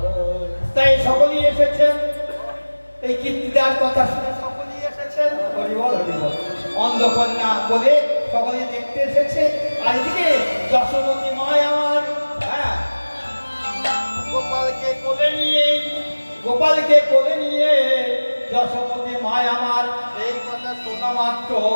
তাই সকলেই এসেছেন এই কীর্তিদার কথা শুনে, সকলেই এসেছেন হরিবল হরিবল, অন্ধকন্যা বলে সকলেই দেখতে দেখতে এসেছে, আর এদিকে যশোমতী মায় আমার হ্যাঁ গোপালকে কোলে নিয়ে যশোমতী মায় আমার এই কথা শোনা মাত্র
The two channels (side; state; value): both; inverted; correlation -1.00